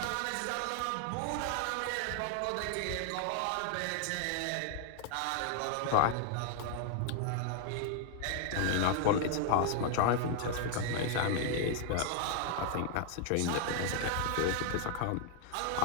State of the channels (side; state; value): both; different; correlation 0.00